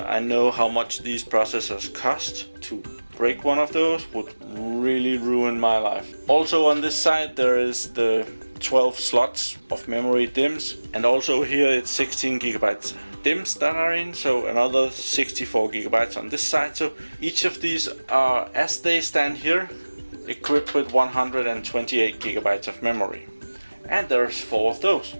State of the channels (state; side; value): inverted; both; correlation -1.00